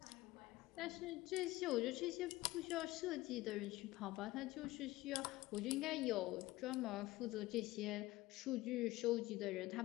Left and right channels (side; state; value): right; quieter; 18.5 dB